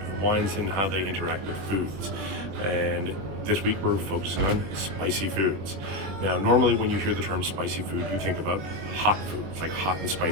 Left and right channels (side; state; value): left; late; 21 ms